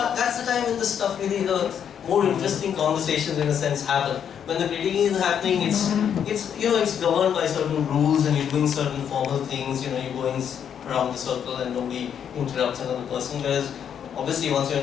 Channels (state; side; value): quieter; right; 8.4 dB